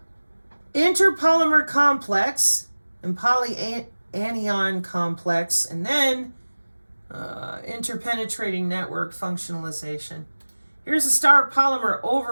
interpolymer complex, and polyanion complex, and then interpenetrating network functionalization. Here's a star polymer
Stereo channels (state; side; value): inverted; both; correlation -1.00